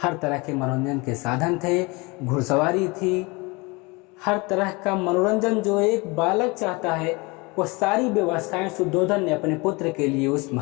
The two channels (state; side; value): quieter; right; 26.5 dB